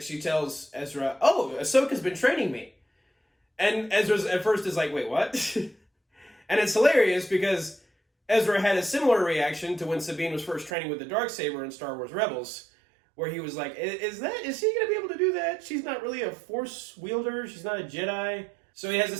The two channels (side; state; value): left; drops out; at 10.7 s